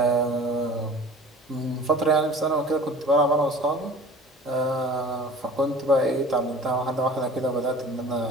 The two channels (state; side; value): normal; both; correlation 0.43